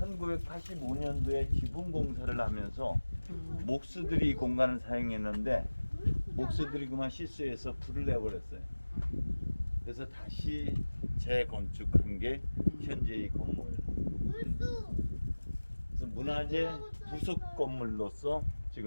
지붕 공사를 하면서 목수들이 이 공간을 사용했는데 목수들이 그만 실수해서 불을 내버렸어요. 그래서 다시 재건축한 게 현재 이 건물. 그래서 문화재 부속 건물로서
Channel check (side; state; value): both; inverted; correlation -1.00